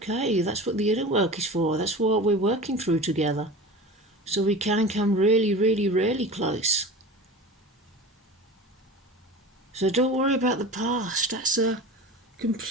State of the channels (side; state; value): both; normal; correlation 0.34